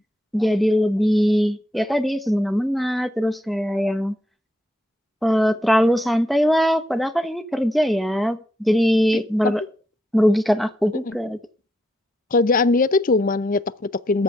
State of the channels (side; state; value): both; normal; correlation 0.81